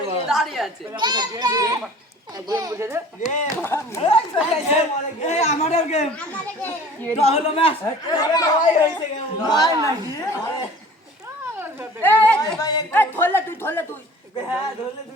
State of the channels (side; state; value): both; normal; correlation 0.46